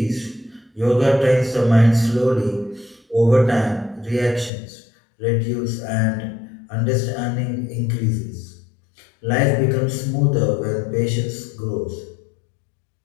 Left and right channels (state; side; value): drops out; right; at 4.5 s